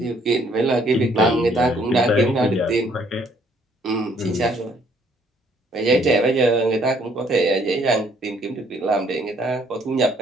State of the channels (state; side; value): normal; both; correlation 0.64